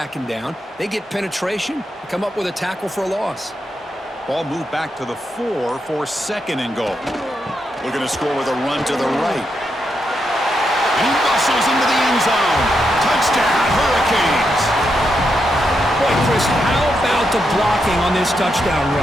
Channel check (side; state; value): both; normal; correlation 0.83